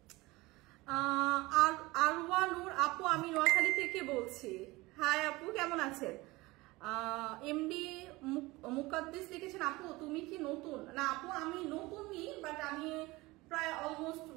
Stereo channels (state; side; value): quieter; left; 21.3 dB